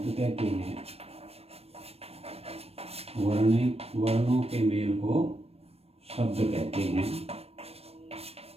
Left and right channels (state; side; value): late; left; 0.29 ms